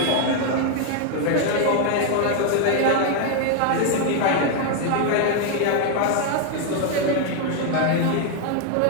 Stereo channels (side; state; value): both; different; correlation 0.00